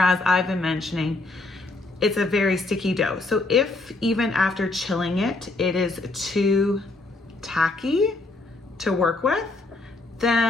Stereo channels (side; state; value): right; quieter; 3.1 dB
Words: I've been mentioning, it's a very sticky dough. So if even after chilling it, it is too tacky to work with,